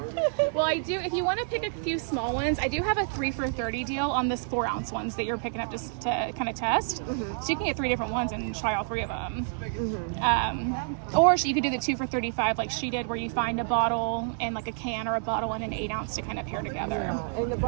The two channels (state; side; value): silent; left; digital silence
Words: Well, I do. If you want to pick a few small ones, I do have a 3 for $30 deal on this 4-ounce ones that you're picking up to kind of test. So you can get 3 different ones and try all 3 of them. Or you could do the 2 for $35 like she did, where you find a bottle and like a can or a bottle and an 8-ounce to kind of pair together. And the